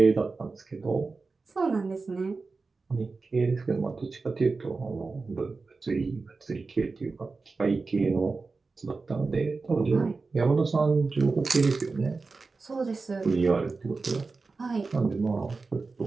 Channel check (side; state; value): left; quieter; 4.1 dB